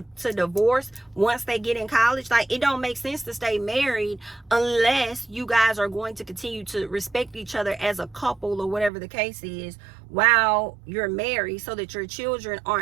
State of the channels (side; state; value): left; drops out; at 8.9 s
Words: divorce once they get in college? Like, it don't make sense to stay married unless you guys are going to continue to respect each other as a couple, or whatever the case is, while you're married, so that your children